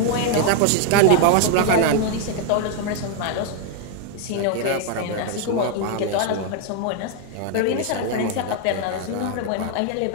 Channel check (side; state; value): both; different; correlation 0.00